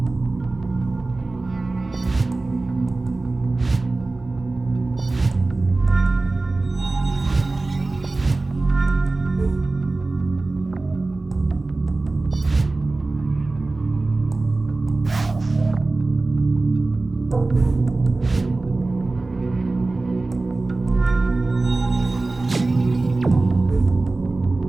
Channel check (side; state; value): left; quieter; 3.3 dB